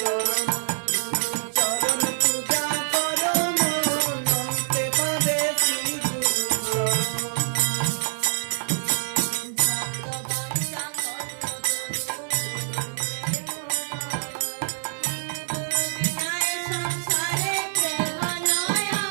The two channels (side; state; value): left; silent; digital silence